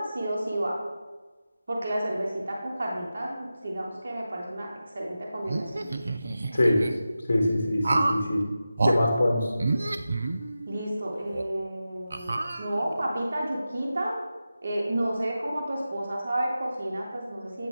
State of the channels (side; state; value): both; inverted; correlation -0.93